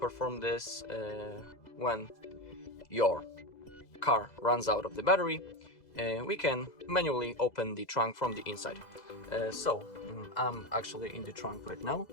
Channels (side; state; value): right; late; 2.0 ms